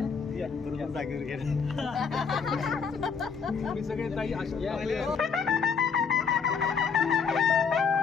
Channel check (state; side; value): quieter; right; 5.9 dB